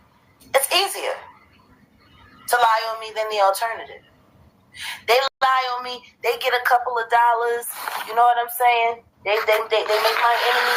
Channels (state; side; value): identical; both; correlation 1.00